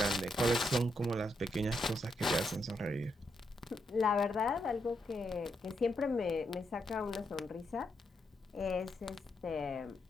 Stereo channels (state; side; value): normal; both; correlation 0.80